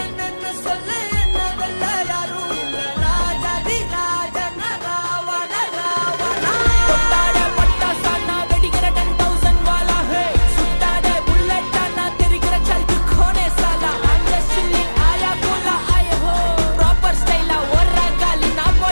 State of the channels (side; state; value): both; inverted; correlation -1.00